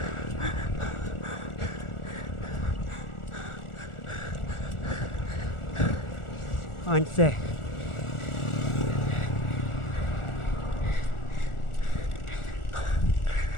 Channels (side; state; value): right; late; 1.4 ms